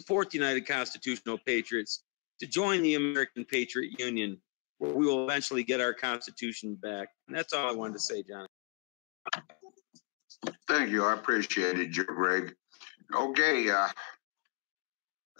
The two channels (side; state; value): right; quieter; 31.8 dB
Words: the United Constitutional Patriots, to join the American Patriot Union, where we will eventually get our Constitution back. And that's all I wanted to say, John. Thank you. I appreciate it, Greg. Okay.